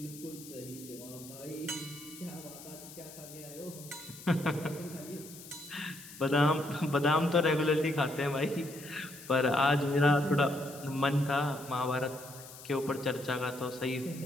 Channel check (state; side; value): noise; left; hiss, 16 dB below the sound